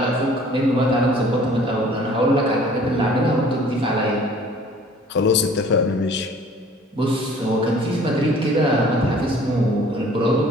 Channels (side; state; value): both; normal; correlation 0.52